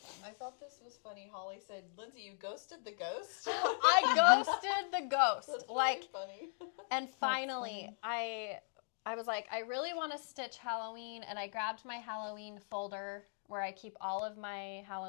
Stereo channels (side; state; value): right; silent; digital silence